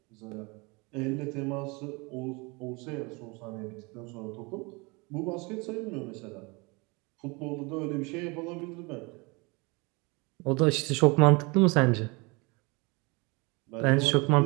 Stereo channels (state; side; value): quieter; left; 27.7 dB